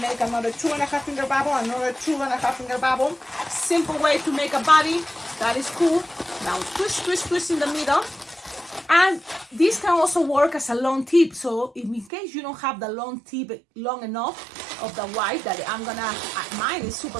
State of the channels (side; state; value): left; drops out; at 12.1 s